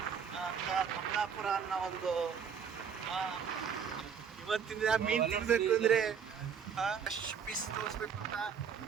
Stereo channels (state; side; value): quieter; left; 7.1 dB